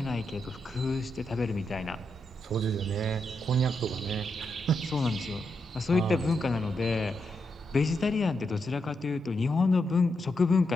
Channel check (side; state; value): both; normal; correlation 0.83